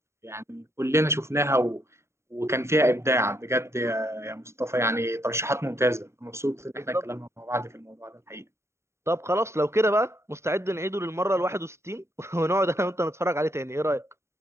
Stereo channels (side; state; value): left; late; 0.13 ms